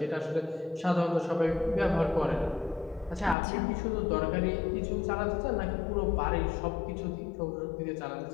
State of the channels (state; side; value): drops out; right; at 3.4 s